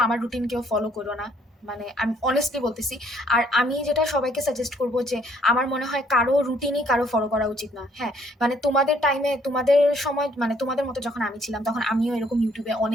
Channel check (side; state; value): both; normal; correlation 0.65